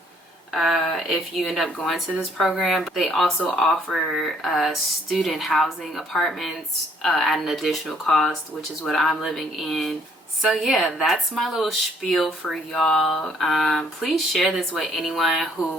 if you end up going to this program. They also offer student housing apartments at an additional cost, which is what I'm living in. So yeah, that's my little spiel for y'all. Please share this with anyone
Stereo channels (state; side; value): normal; both; correlation 0.64